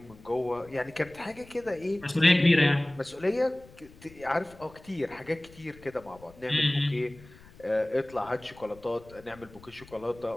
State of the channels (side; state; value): left; noise; rumble, 22 dB below the sound